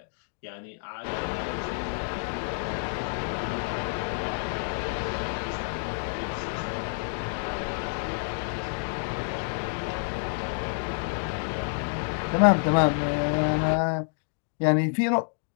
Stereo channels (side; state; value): right; silent; digital silence